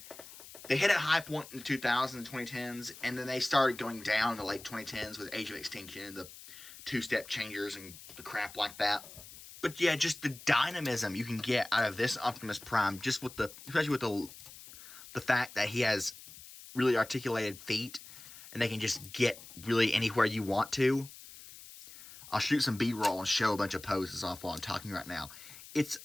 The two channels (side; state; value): left; noise; hiss, 17 dB below the sound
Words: they hit a high point in the 2000s and 2010s, and then they started going down in the late 2010s with Age of Extinction and the two-step changers and the crap like that. But yeah, just the dynamism you can get out of this Optimus Prime, just with especially with the fact that he has really articulated feet, and they can just get really anywhere you want to. I'll shoot some B-roll and show a bunch of poses off while I'm talking right now. It's